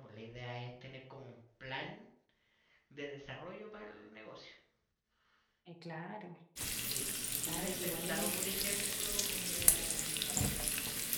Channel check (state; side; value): identical; both; correlation 1.00